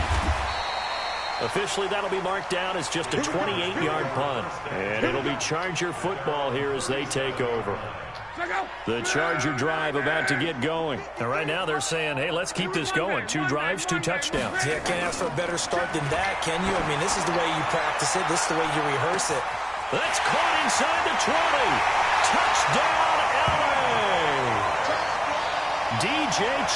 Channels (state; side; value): identical; both; correlation 1.00